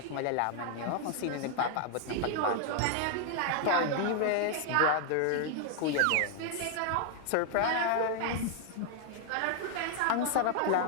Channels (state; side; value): different; both; correlation 0.00